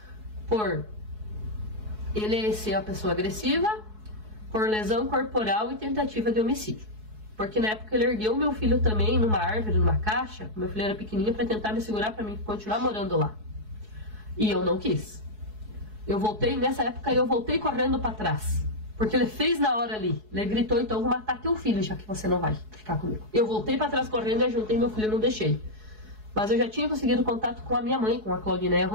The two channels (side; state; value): left; late; 4.7 ms